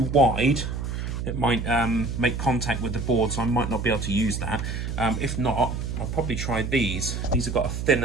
wide it might make contact with the board, so I might not be able to use that. If not, I'll probably try these. These have got a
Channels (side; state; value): right; noise; hum, 4 dB below the sound